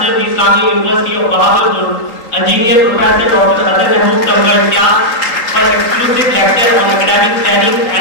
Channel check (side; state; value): right; late; 3.8 ms